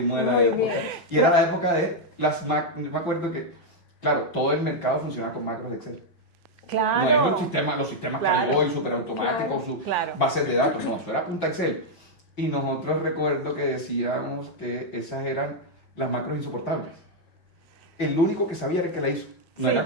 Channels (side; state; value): right; late; 5.7 ms